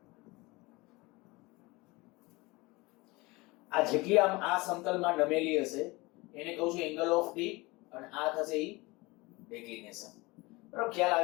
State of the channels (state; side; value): quieter; right; 23.3 dB